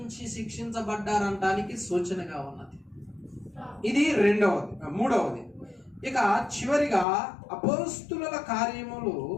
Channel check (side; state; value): right; drops out; at 7.1 s